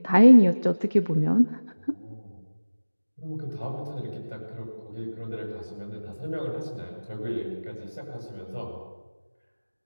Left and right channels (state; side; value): inverted; both; correlation -1.00